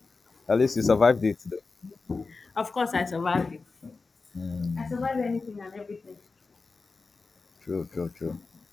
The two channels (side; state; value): right; quieter; 4.1 dB